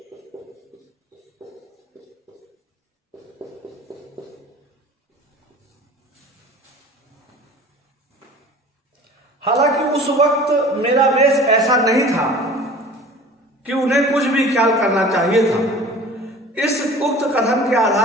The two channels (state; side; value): normal; both; correlation 0.43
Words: हालांकि उस वक्त मेरा वेश ऐसा नहीं था कि उन्हें कुछ भी ख्याल करना चाहिए था। इस उक्त कथन के